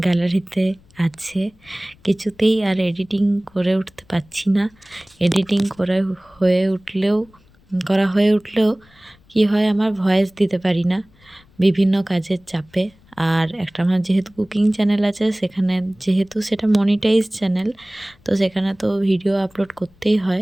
গ্যালারিতে আছে, কিছুতেই আর এডিটিং করে উঠতে পারছি না। এডিটিং করা হয়ে উঠলেও কি হয়, আমার ভয়েস দিতে পারি না বিভিন্ন কাজের চাপে। আর একটা আমার যেহেতু কুকিং চ্যানেল আছে, সেখানে যেহেতু সেটা মনিটাইজ চ্যানেল, তো সেখানে তো ভিডিও আপলোড করতেই হয়।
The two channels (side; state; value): left; noise; rumble, 30 dB below the sound